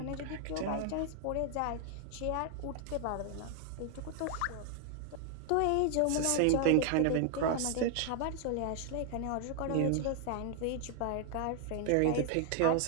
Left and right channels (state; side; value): different; both; correlation 0.00